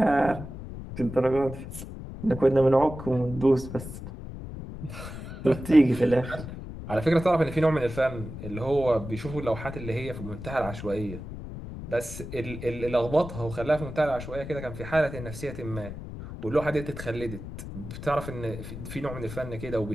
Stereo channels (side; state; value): left; noise; rumble, 10 dB below the sound